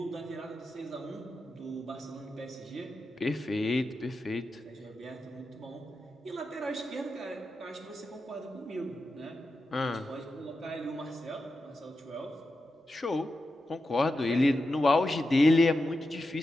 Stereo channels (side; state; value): both; normal; correlation 0.89